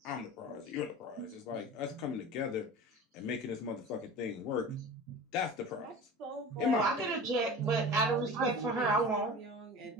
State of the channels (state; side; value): normal; both; correlation 0.35